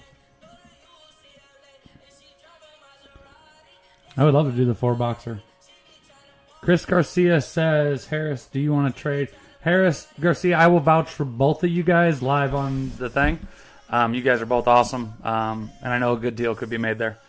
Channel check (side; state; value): both; identical; correlation 1.00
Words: I would love to do the 4 boxer. Chris Garcia says, Harris, do you want to trade? Harris, Garcia, I will vouch for both of you guys live on the thing. You guys are both awesome. And I know a good deal could be made there.